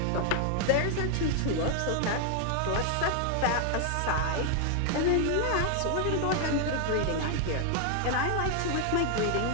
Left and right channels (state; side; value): different; both; correlation 0.00